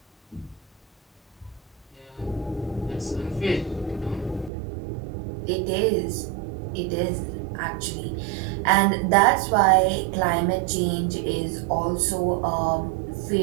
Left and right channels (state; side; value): drops out; left; at 4.5 s